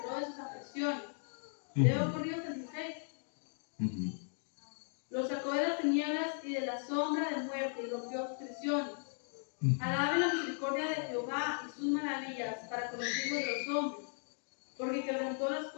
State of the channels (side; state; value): right; silent; 53 dB below the other